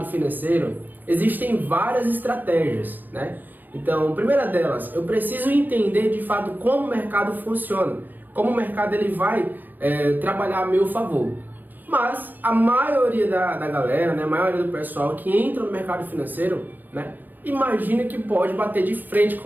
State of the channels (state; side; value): late; left; 0.090 ms